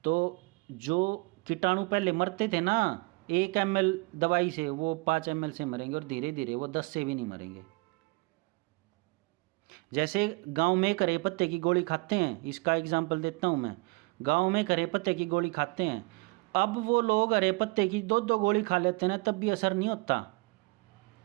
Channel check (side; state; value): left; quieter; 27.6 dB